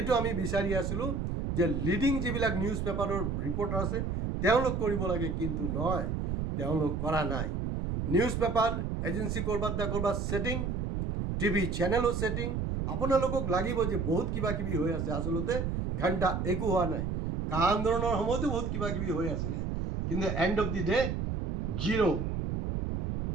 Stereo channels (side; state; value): right; noise; rumble, 1 dB below the sound